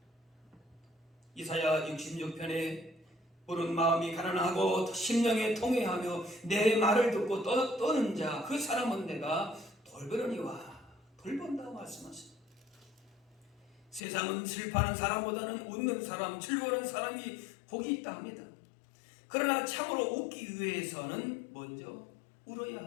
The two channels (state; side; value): drops out; right; at 14.0 s